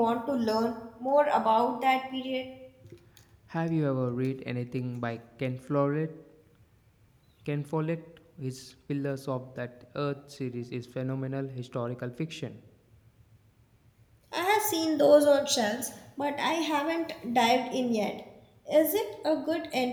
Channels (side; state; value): both; identical; correlation 1.00